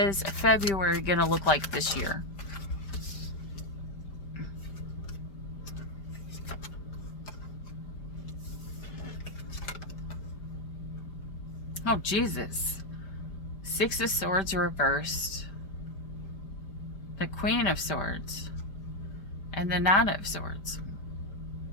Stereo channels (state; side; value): late; right; 5.1 ms